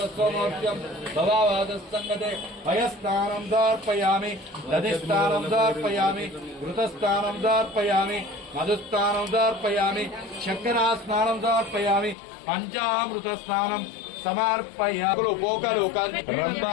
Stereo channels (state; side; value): drops out; right; at 12.2 s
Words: భవావాదస్సంగతే భయస్నానం సమర్పయామి దధిస్నానం సమర్పయామి ఘృతస్నానం సమర్పయామి మధుస్నానం సమర్పయామి చక్రాస్నానం సమర్పయామి పంచామృత స్నానం సమర్పయామి పోకలు